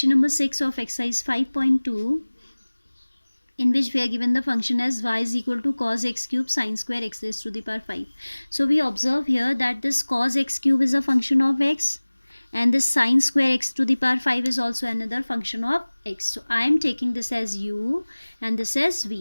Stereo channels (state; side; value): inverted; both; correlation -1.00